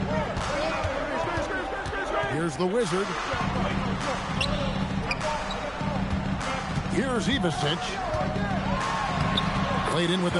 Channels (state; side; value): identical; both; correlation 1.00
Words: Here's the Wizard. Here's Ivasic. Played in with a